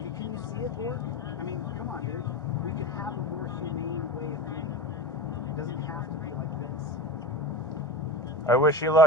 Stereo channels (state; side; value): noise; right; hum, 28 dB below the sound